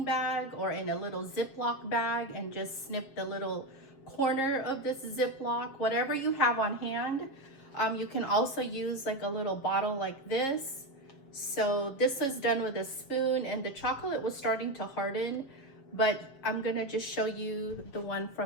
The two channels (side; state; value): right; late; 7.4 ms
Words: bag or in a little Ziploc bag and just snip the little corner of this Ziploc, whatever you have on hand. You can also use like a little bottle like this. So this was done with a spoon, and the chocolate was starting to harden, but I'm gonna just show you the one